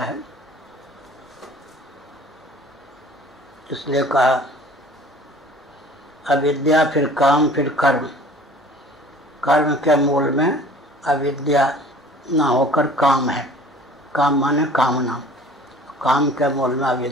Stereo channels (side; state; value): both; normal; correlation 0.48